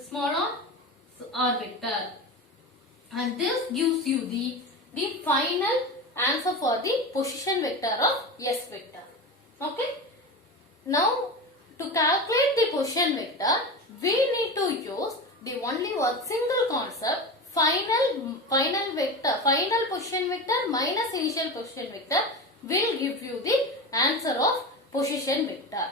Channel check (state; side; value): normal; both; correlation 0.25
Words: small r vector, and this gives you the final answer for the position vector of S vector. Okay. Now to calculate the position vector, we need to use the only one single concept, final vector, final position vector minus initial position vector will give you the answer of position vector.